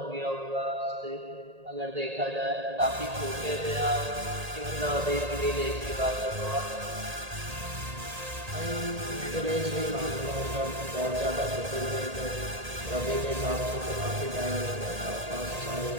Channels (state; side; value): late; left; 1.8 ms